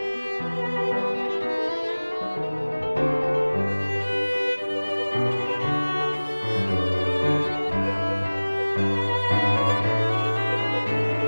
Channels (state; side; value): inverted; both; correlation -1.00